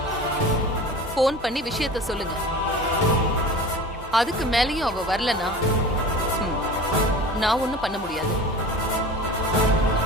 போன் பண்ணி விஷயத்த சொல்லுங்க. அதுக்கு மேலயும் அவ வரலனா நான் ஒண்ணும் பண்ண முடியாது.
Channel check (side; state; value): both; normal; correlation 0.37